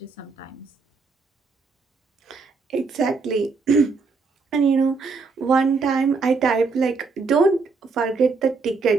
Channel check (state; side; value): quieter; left; 4.5 dB